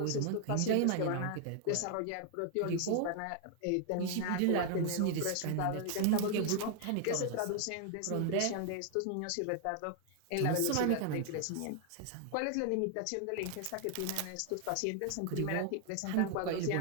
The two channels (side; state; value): both; different; correlation 0.00